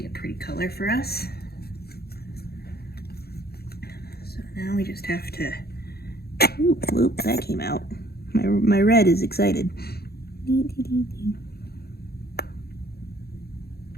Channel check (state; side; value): late; right; 0.46 ms